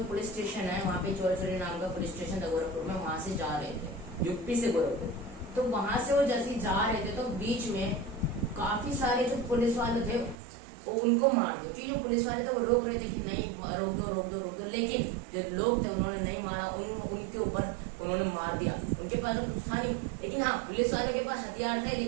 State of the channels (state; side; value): drops out; left; at 10.4 s